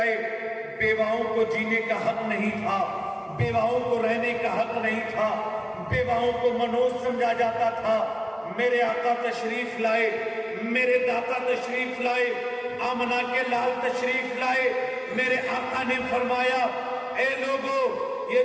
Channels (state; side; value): identical; both; correlation 1.00